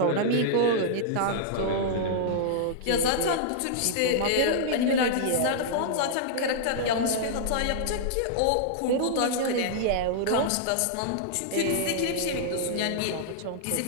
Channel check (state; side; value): different; both; correlation -0.01